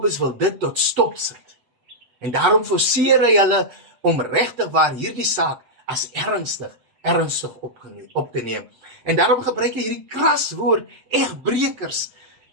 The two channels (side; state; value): left; late; 8.0 ms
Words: wil dit tot stop sit. En daarom forceer hy hulle om regtig waar hierdie saak as ernstig op te neem. En daarom gebruik hy hierdie kras woord, egbrekers.